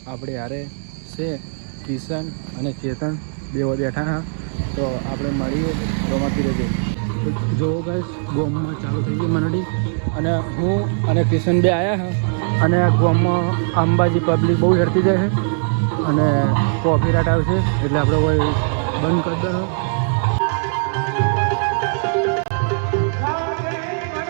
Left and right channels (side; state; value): left; silent; digital silence